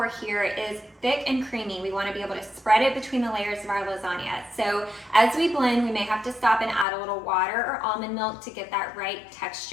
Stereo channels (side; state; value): right; drops out; at 6.9 s